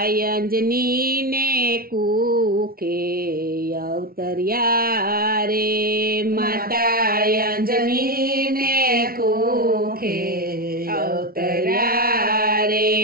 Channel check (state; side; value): late; left; 0.43 ms